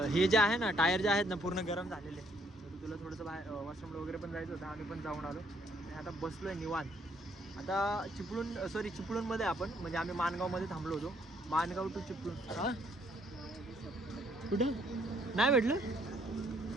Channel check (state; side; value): normal; both; correlation 0.68